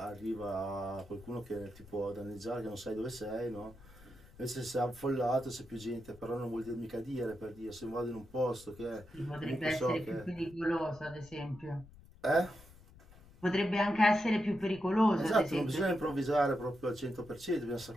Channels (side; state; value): left; noise; rumble, 21 dB below the sound